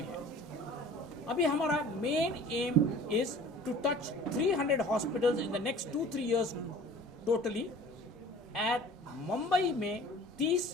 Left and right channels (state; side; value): normal; both; correlation 0.45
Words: है। अभी हमारा main aim is to touch 300 hospitals in the next 2-3 years totally. At Mumbai में